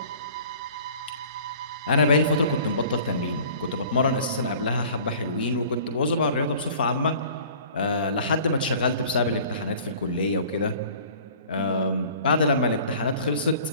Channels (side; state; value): both; inverted; correlation -0.47